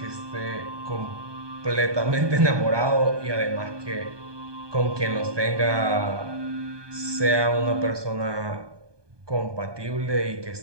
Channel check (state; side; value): late; left; 1.2 ms